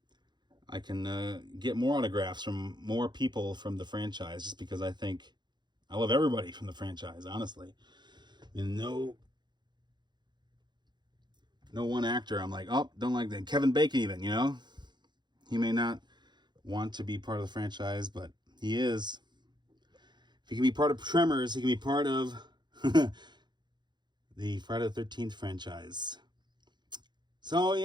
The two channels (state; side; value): late; left; 0.21 ms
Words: I can get more autographs from more people from the franchise, just because I love everybody from the franchise, honestly. And no one actor I'm like, oh, don't like that. Kevin Bacon even, you know? He may not want to be part of the franchise, but he is. If he can be part of Tremors, he can be part of the Friday the 13th franchise. So,